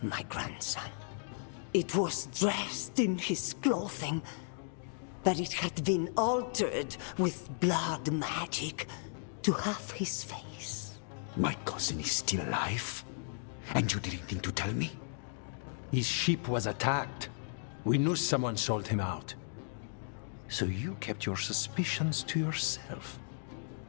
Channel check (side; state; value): right; silent; digital silence